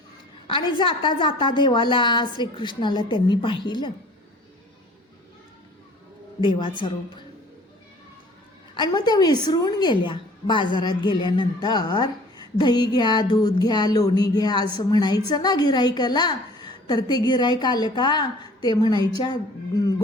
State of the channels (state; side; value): normal; both; correlation 0.50